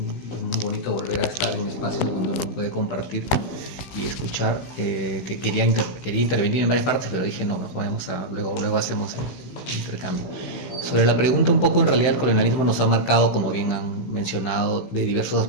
bonito volver a estar en espacios donde uno puede compartir y escuchar. Que quería intervenir en varias partes, pero dije no, luego hacemos el intercambio. Sobre la pregunta un poco, en realidad el colonialismo nos ha marcado, como bien han mencionado, de diversos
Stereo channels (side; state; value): right; late; 15 ms